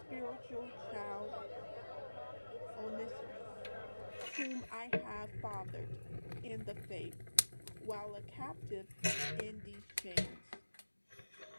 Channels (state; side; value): inverted; both; correlation -1.00